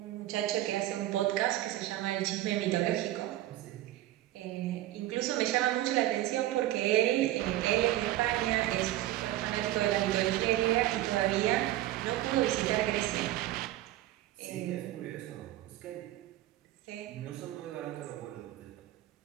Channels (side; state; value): left; quieter; 14.8 dB